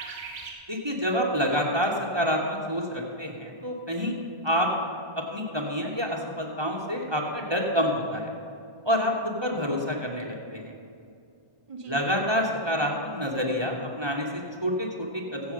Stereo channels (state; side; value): late; left; 1.2 ms